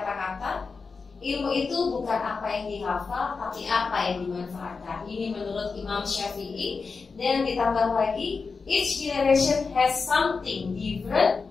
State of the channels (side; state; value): right; quieter; 4.7 dB